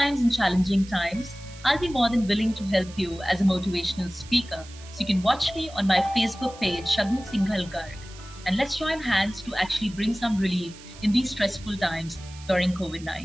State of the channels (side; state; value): right; noise; hiss, 19 dB below the sound